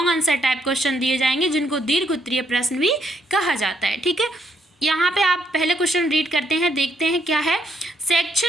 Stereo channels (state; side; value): normal; both; correlation 0.73